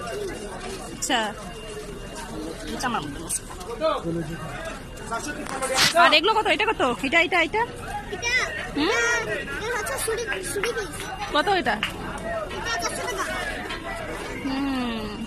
আচ্ছা আমার মতো। আর এগুলো কত? এটা কত? এটা এটা এটা কত এটা?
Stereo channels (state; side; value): identical; both; correlation 1.00